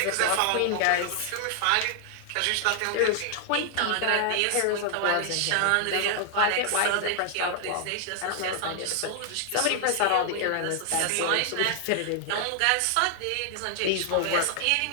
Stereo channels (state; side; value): different; both; correlation 0.00